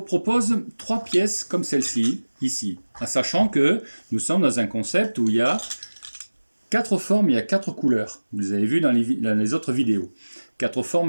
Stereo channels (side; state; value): both; inverted; correlation -1.00